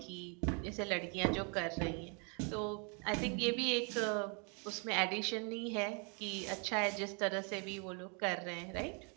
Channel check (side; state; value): left; quieter; 36.0 dB